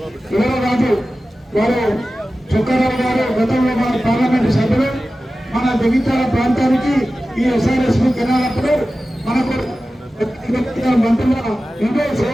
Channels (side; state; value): both; normal; correlation 0.95